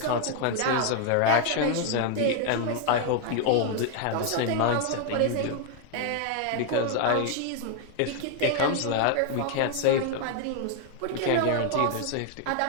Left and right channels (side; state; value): both; different; correlation 0.00